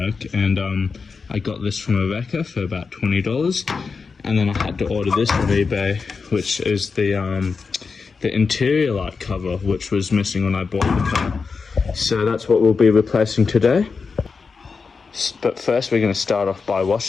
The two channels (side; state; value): right; quieter; 4.9 dB